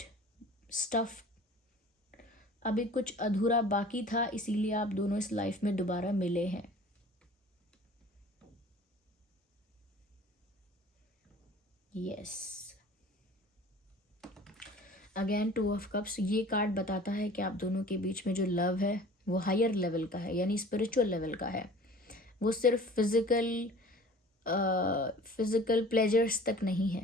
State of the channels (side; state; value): both; normal; correlation 0.45